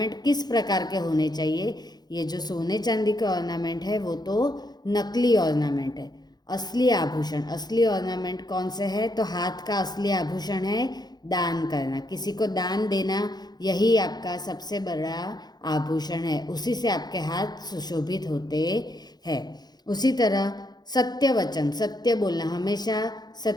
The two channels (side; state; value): right; late; 0.20 ms